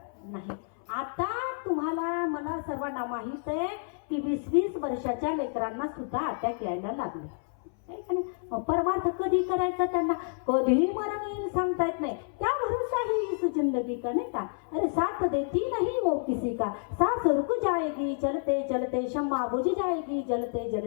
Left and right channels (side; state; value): right; silent; 58 dB below the other